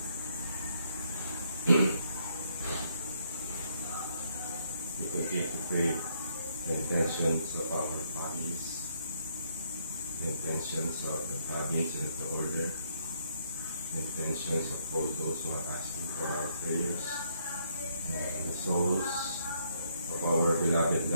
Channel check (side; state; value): both; inverted; correlation -0.72